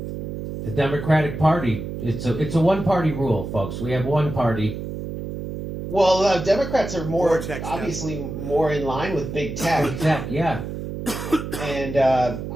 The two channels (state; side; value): noise; right; hum, 7 dB below the sound